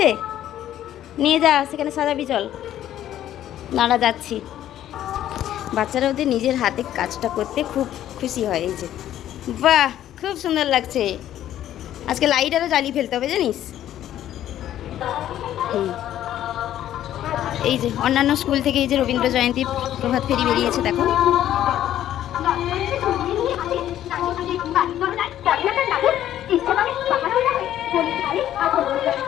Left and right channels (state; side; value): quieter; right; 12.0 dB